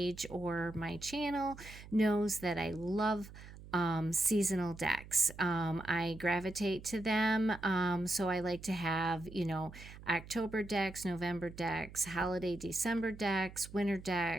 or my channel knows that I love seasonal decks. I gravitate to them. So I like to have, October decks, November decks, holiday December decks, winter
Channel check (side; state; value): right; noise; hum, 16 dB below the sound